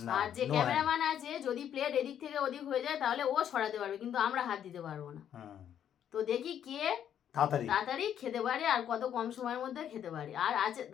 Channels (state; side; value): quieter; right; 9.6 dB